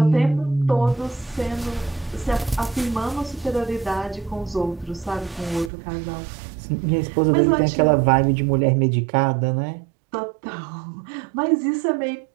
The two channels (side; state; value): left; drops out; at 5.7 s